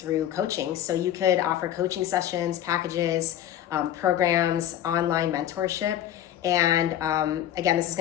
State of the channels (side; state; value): right; quieter; 11.5 dB